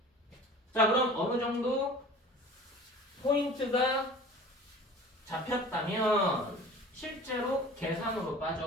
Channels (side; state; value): both; normal; correlation 0.43